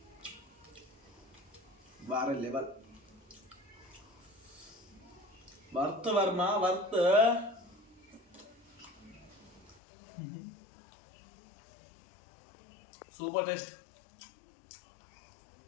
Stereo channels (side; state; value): right; drops out; at 9.8 s